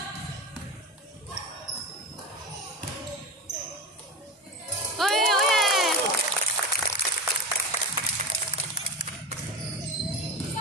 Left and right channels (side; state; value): both; normal; correlation 0.25